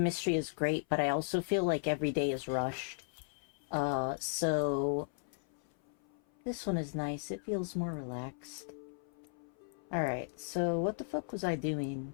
is great, but I also feel like every day is rushed. So this one is nice. It feels more relaxed. Alright, so what the fuck was I doing?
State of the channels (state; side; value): silent; right; 54 dB below the other